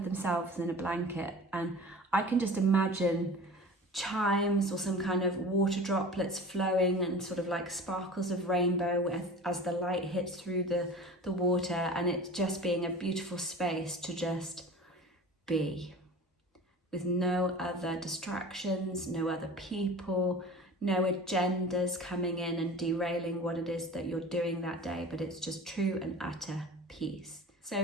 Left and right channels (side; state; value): both; normal; correlation 0.38